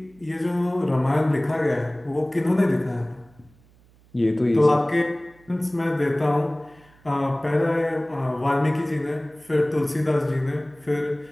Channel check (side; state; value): right; noise; hum, 29 dB below the sound